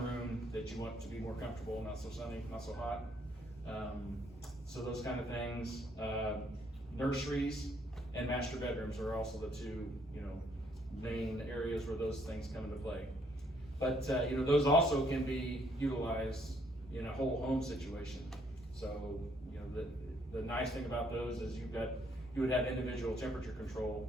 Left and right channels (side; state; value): both; normal; correlation 0.68